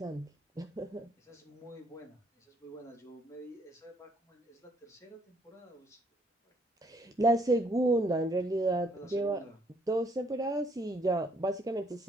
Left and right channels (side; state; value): both; normal; correlation 0.67